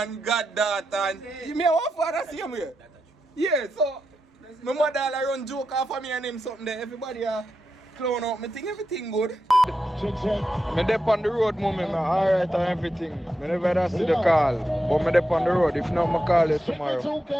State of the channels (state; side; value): normal; both; correlation 0.87